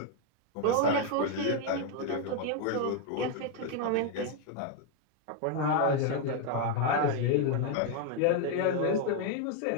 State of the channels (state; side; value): different; both; correlation 0.01